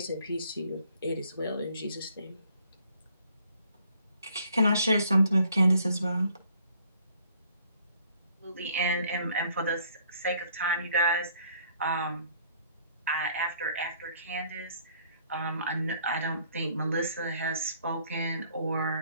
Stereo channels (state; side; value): inverted; both; correlation -0.62